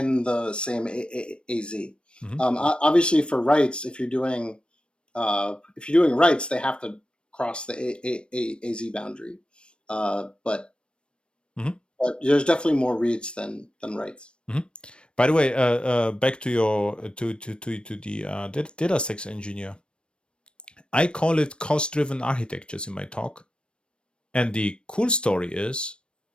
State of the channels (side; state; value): right; late; 0.056 ms